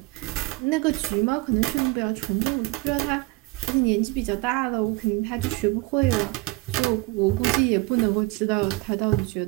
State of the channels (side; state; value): left; quieter; 22.0 dB